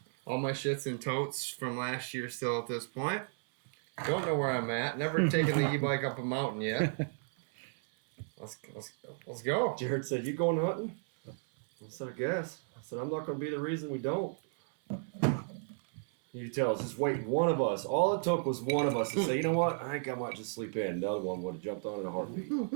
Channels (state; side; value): silent; left; 55 dB below the other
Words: all my shit's in totes from last year still at this point. Don't know where I'm at. Never taken the e-bike up a mountain yet. Let's go. Jared said, you going hunting? I said, I guess. I said, I'm not going to be the reason we don't. You tell us, just waiting. One of us. All it took was one of us to say, you know what? I think I might just sleep in. The other one would have jumped on in a heartbeat.